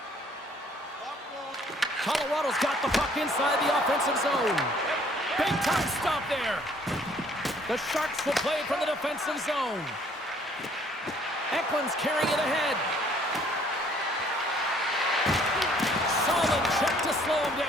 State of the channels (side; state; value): both; normal; correlation 0.60